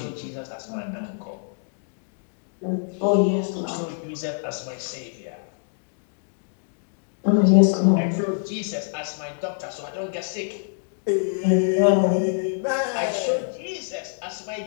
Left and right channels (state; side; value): silent; right; digital silence